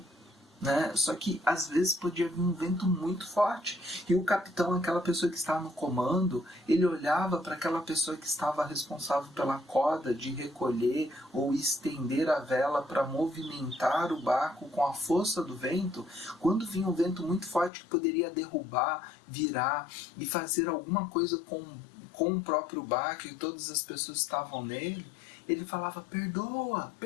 Só que às vezes podia vir um vento muito forte e o capitão, aquela pessoa que estava no comando, ele olhava para aquela pessoa que estava responsável pela corda de recolher ou estender a vela para movimentar o barco com a força do vento. Quando vinha um vento muito forte que poderia derrubar, virar e fazer alguma coisa com o próprio barco e todas as pessoas que estavam nele, ele falava, perdoa,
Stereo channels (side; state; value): right; drops out; at 17.7 s